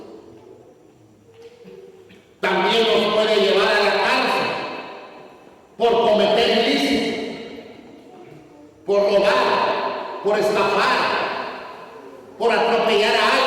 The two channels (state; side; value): identical; both; correlation 1.00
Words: También nos puede llevar a la cárcel por cometer ilícitos, por robar, por estafar, por atropellar a